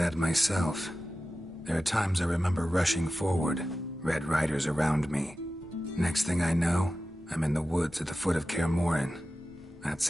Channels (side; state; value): both; normal; correlation 0.94